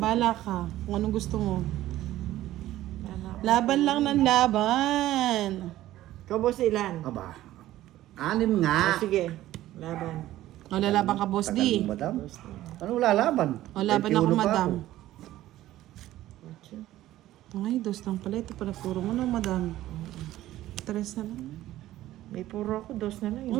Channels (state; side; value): quieter; left; 14.6 dB